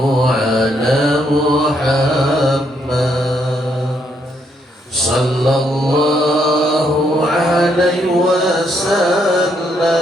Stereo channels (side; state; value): both; normal; correlation 0.74